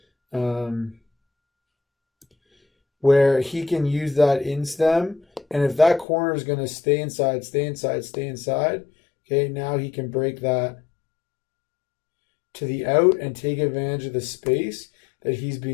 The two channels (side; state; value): right; drops out; at 6.1 s